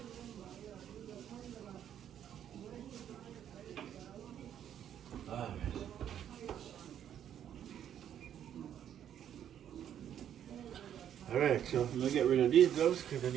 Alright, so I'm gonna get rid of these gloves because I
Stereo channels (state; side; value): quieter; left; 9.9 dB